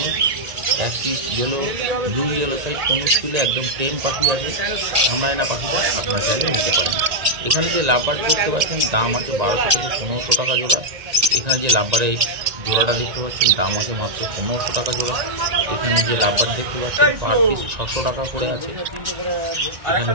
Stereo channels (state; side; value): late; left; 1.9 ms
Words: এক পিস ব্লু ইয়েলো সাইড কোনো স্কুলে একদম টেম পাখি আছে, কামড়ায় না পাখিটা, আপনারা চাইলে নিতে পারেন। এখানে যে লাভবার্ড দেখতে পাচ্ছেন দাম আছে 1200 থেকে 1500 টাকা জোড়া। এখানে যে লাভবার্ডের জোড়াটা দেখতে পাচ্ছেন দাম আছে মাত্র 1500 টাকা জোড়া। এখানে যে লাভবার্ড দেখতে পাচ্ছেন পার পিস 600 টাকা করে আছে। এখানে